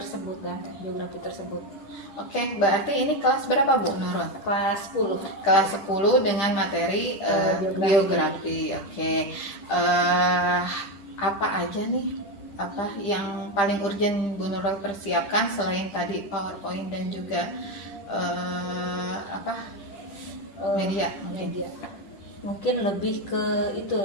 dan teks geografi tersebut. Oke, berarti ini kelas berapa Bu Nurul? Kelas 10. Kelas 10 dengan materi geografi. Oke. Apa aja nih yang paling urgent Bu Nurul persiapkan selain tadi PowerPoint dan juga media mungkin lebih ke itu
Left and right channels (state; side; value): late; right; 10 ms